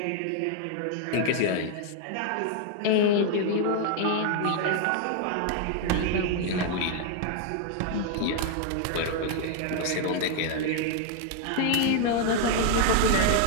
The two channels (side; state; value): both; different; correlation 0.00